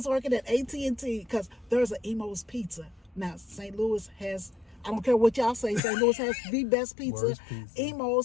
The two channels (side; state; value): right; drops out; at 5.8 s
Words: working at AT&T, because there's an Emo's Pizza. Now, St. Louis has, I don't care what y'all say, St. Louis has the best pizza.